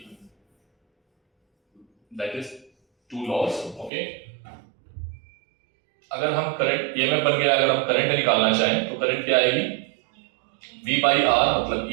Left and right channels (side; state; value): left; drops out; at 3.9 s